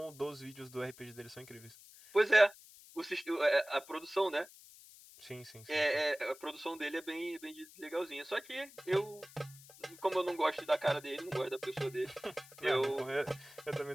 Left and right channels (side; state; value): left; noise; hiss, 20 dB below the sound